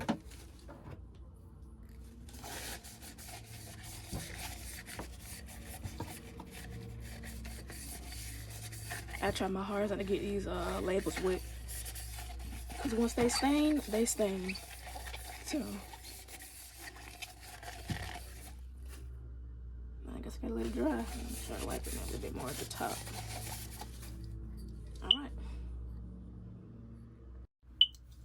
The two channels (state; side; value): identical; both; correlation 1.00